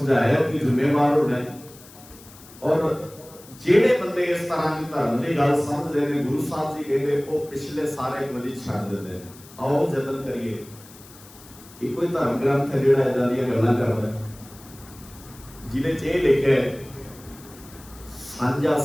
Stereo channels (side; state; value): left; noise; hiss, 21 dB below the sound